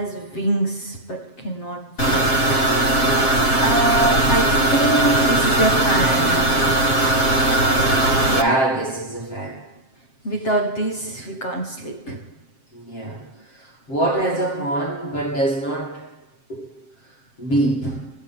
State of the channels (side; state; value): right; late; 7.5 ms